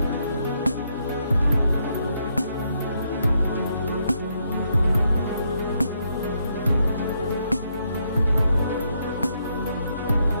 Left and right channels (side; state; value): both; inverted; correlation -0.76